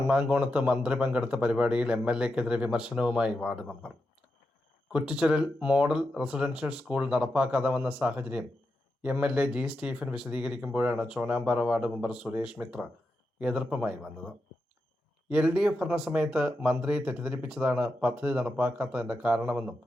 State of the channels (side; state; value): both; normal; correlation 0.87